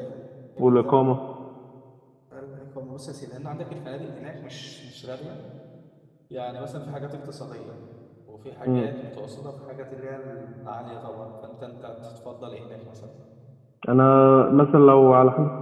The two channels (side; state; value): both; identical; correlation 1.00